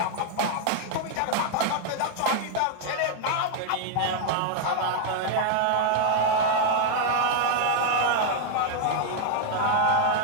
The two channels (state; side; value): different; both; correlation 0.00